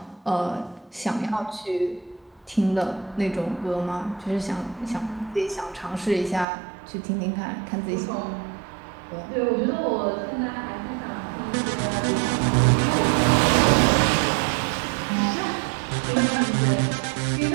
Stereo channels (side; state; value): left; drops out; at 6.5 s